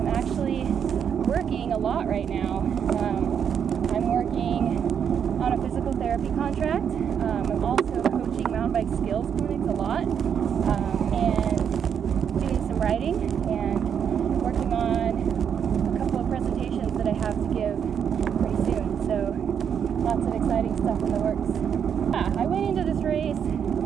actually working a lot right now. I'm working on a physical therapy contract. I'm also coaching mountain bike skills clinics a lot, and doing some writing and working on a couple of presentations that I have to give pretty soon. So lots of exciting stuff in the works. Yeah, I went into this race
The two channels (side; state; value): left; quieter; 7.8 dB